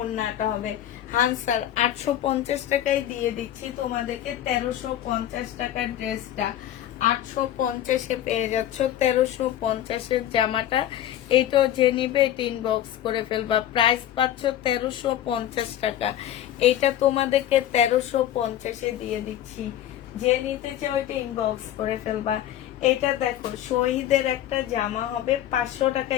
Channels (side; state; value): right; quieter; 11.9 dB